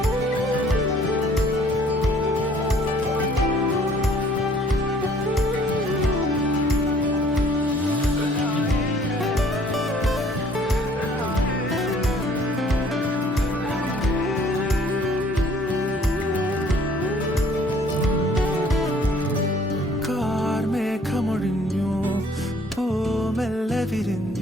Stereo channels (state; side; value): normal; both; correlation 0.57